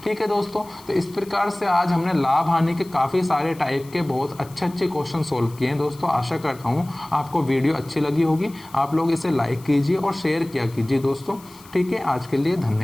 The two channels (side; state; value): left; noise; hiss, 23 dB below the sound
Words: ठीक है दोस्तों, तो इस प्रकार से आज हमने लाभ हानि के काफ़ी सारे टाइप के बहुत अच्छे क्वेश्चन सोल्व किए हैं दोस्तों। आशा करता हूँ आपको वीडियो अच्छी लगी होगी। आप लोग इसे लाइक कीजिए और शेयर किया कीजिए दोस्तों। ठीक है, आज के लिए